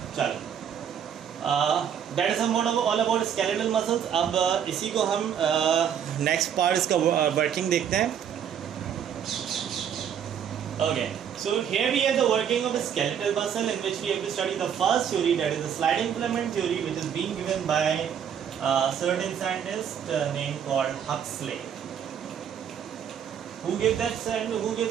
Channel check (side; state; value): left; quieter; 8.5 dB